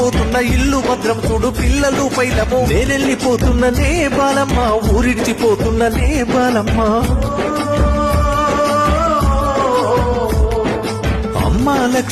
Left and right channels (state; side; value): identical; both; correlation 1.00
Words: ఇల్లు భద్రం చూడు పిల్లలు పైలము నేనెళ్ళిపోతున్న నే బాలమ్మ ఊరిడ్చిపోతున్న నే బాలమ్మ అమ్మా